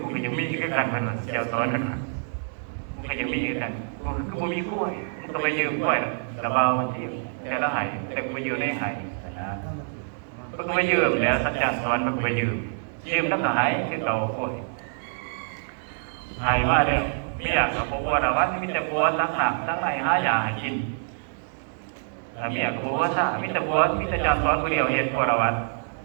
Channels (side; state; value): left; silent; digital silence